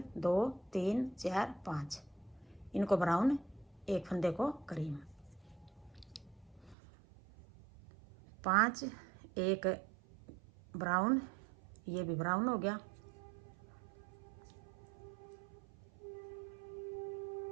2 3 4 5, इनको ब्राउन, एक फंदे को क्रीम। 5 1 ब्राउन, ये भी ब्राउन हो गया।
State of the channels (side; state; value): left; drops out; at 6.8 s